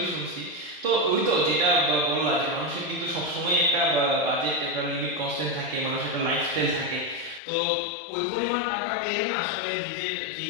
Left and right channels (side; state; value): right; drops out; at 7.4 s